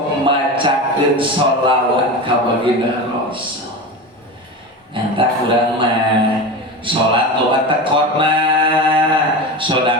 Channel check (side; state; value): both; normal; correlation 0.25